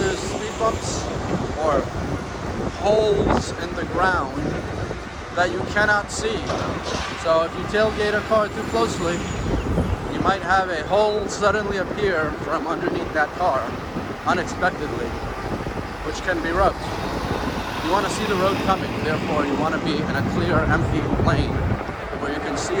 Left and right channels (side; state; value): both; identical; correlation 1.00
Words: speed bumps or holes in the ground that you cannot see. So if you tailgate a car too closely, you might have a hole suddenly appear from underneath that car unexpectedly, which can be rough. You want to see the road coming, therefore you want to be in a clear, empty lane where you can see